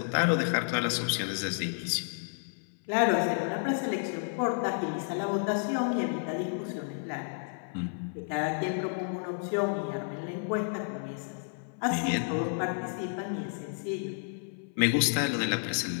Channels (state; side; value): silent; right; 57 dB below the other